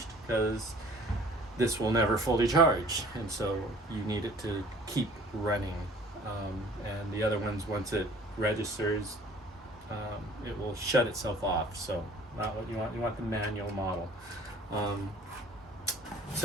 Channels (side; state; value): both; normal; correlation 0.51